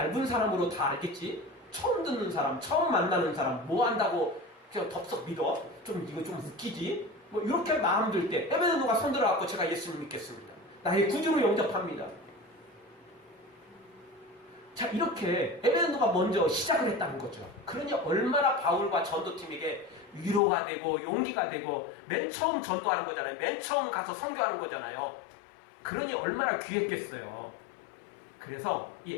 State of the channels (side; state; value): right; drops out; at 20.4 s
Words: 사람으로 다 알겠지. 처음 듣는 사람, 처음 만나는 사람 뭐 한다고 그냥 덥석 믿어? 이거 좀 웃기지? 뭐 이렇게 마음 들 때 에베네노가 손들어갖고 제가 예수님 믿겠습니다. 나의 구주로 영접합니다. 자, 이렇게 에베네노가 먼저 시작을 했다는 거죠. 그러니 얼마나 바울과 전도팀에게 위로가 되고 용기가 되고 맨 처음 전도하는 거잖아요. 맨 처음 가서 선교하는 거잖아요. 그러니 얼마나 귀했겠어요. 그래서 이